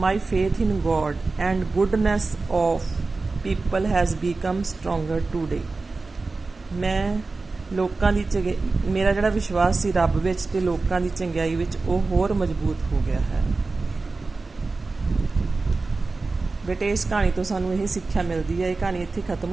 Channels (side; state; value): left; quieter; 3.7 dB